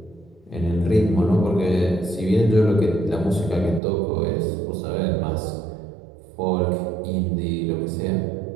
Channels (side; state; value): left; drops out; at 3.8 s